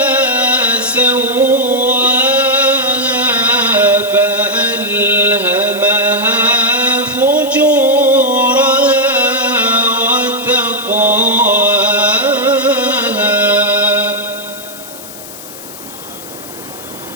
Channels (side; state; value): left; noise; hiss, 15 dB below the sound